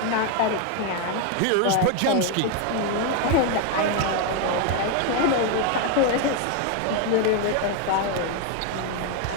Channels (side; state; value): both; different; correlation 0.01